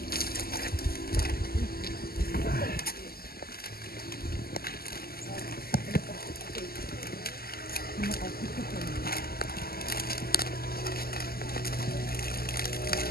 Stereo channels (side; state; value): right; late; 0.44 ms